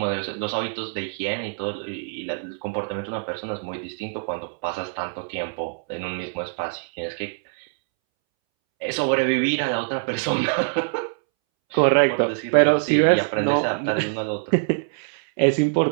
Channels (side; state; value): left; silent; 63 dB below the other